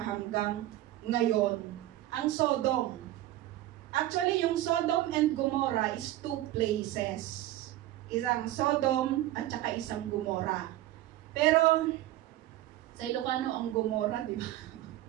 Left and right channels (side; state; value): left; quieter; 15.0 dB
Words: ngayon. Ang Sodom. Actually, yung Sodom and Gomorrah is two places. Isang Sodom at saka isang Gomorrah. Pero, sa Ilocano, ang Gomorrah, di ba?